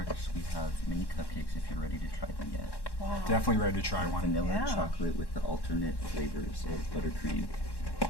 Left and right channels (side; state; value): right; late; 1.1 ms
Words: we have mini cupcakes if you're ready to try them yet. Wow. Definitely ready to try one. Vanilla Yeah. chocolate with the alternate flavors of buttercream.